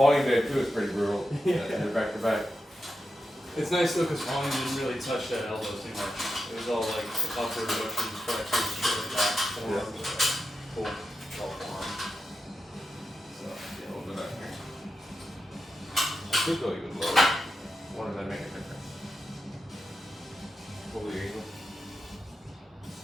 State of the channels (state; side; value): normal; both; correlation 0.89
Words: day too is pretty brutal. Yeah. You're back to back. It's nice though, because volume didn't really touch that elbow too much. It was all like upward motions, flexors, shit like that. Forearm, pull, all forearm. So, yeah, we'll do that here. I could go even lower. What does that make a difference? Pull the angle.